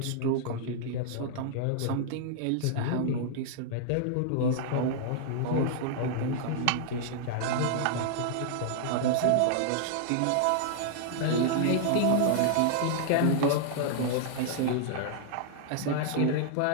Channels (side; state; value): both; different; correlation -0.01